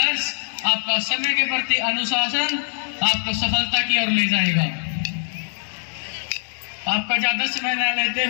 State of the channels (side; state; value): right; silent; 64 dB below the other